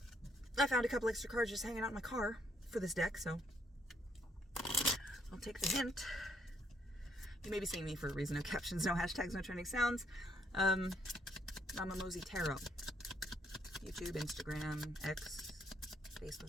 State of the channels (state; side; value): normal; both; correlation 0.71